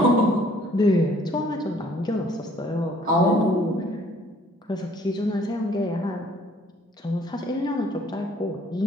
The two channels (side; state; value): both; normal; correlation 0.59